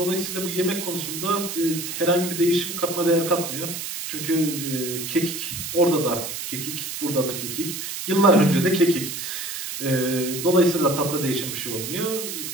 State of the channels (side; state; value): right; noise; hiss, 6 dB below the sound